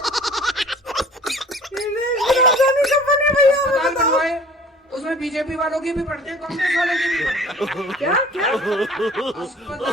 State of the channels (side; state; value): both; normal; correlation 0.48